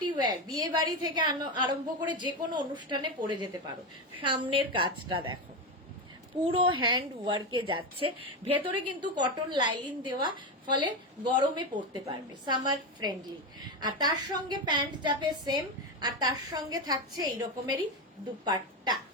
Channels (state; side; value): normal; both; correlation 0.14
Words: ওয়্যার, বিয়ে বাড়ি থেকে আরম্ভ করে যে কোনো অনুষ্ঠানে পরে যেতে পারো। সামনের কাজটা দেখো পুরো হ্যান্ড ওয়ার্কে যাচ্ছে। ভেতরে কিন্তু কটন লাইলিন দেওয়া, ফলে গরমে পরতে পারবে, সামার ফ্রেন্ডলি। আর তার সঙ্গে প্যান্ট যাবে সেম, আর তার সঙ্গে থাকছে এই রকমেরই দুপাট্টা।